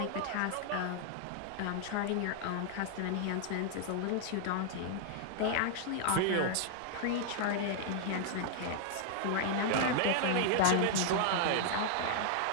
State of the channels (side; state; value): both; different; correlation 0.00